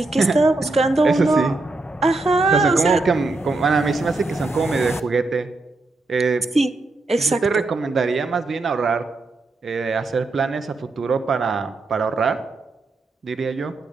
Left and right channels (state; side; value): quieter; left; 3.3 dB